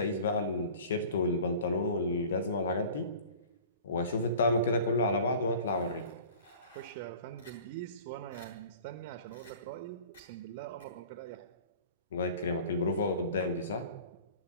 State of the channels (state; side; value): inverted; both; correlation -0.44